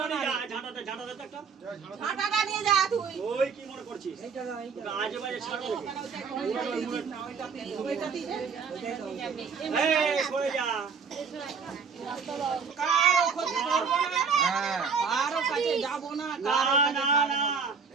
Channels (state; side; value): quieter; left; 5.7 dB